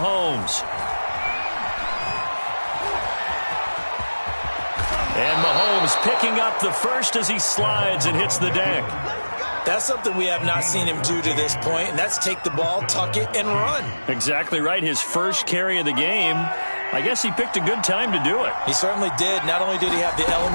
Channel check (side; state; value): both; inverted; correlation -1.00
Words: And Mahomes picking up the first as he slides and hits the deck. That's something we have not seen him do to this point, and that's take the ball, tuck it, and run. Exactly right. His first carry of the game. I guess he picked a good time to do it. He certainly did. Not only did he have the